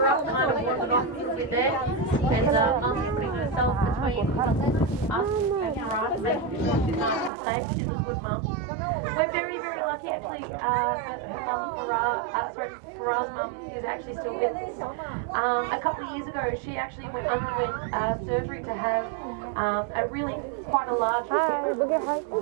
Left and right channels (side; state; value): left; drops out; at 7.3 s